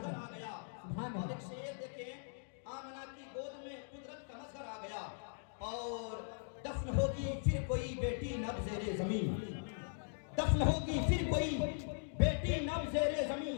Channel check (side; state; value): right; silent; digital silence